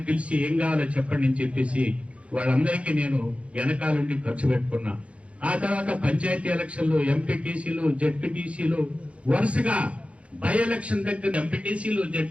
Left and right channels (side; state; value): left; late; 0.062 ms